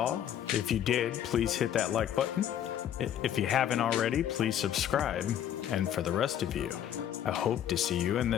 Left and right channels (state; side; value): quieter; right; 10.3 dB